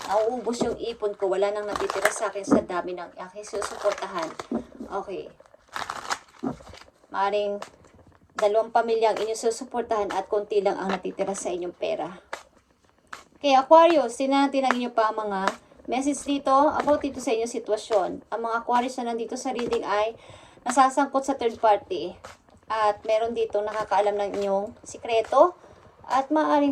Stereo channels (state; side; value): identical; both; correlation 1.00